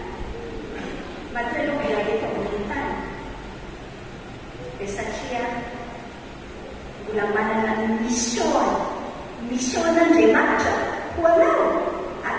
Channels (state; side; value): identical; both; correlation 1.00